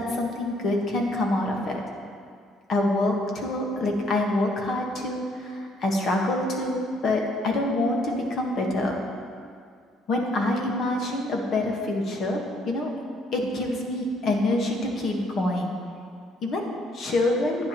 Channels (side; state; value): both; normal; correlation 0.66